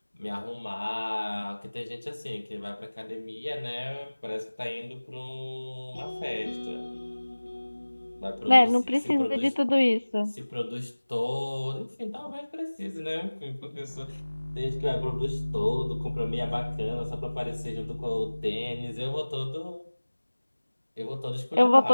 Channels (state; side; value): inverted; both; correlation -1.00